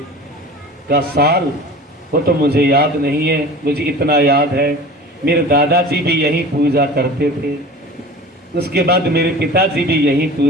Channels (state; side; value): normal; both; correlation 0.38